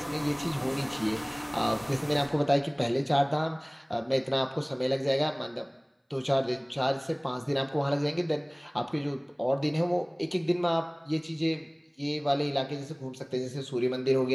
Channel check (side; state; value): both; identical; correlation 1.00